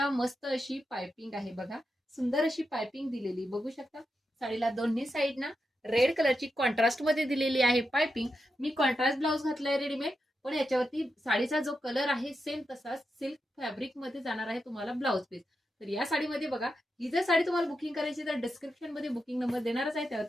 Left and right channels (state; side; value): normal; both; correlation 0.87